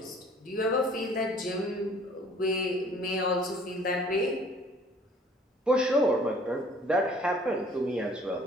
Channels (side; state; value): both; normal; correlation 0.54